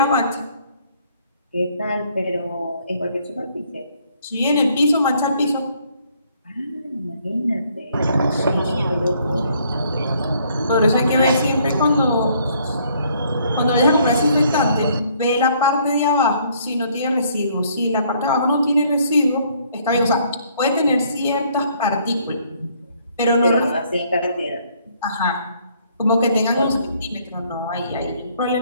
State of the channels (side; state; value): both; inverted; correlation -0.64